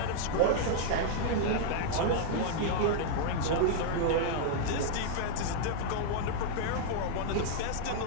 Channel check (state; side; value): different; both; correlation -0.01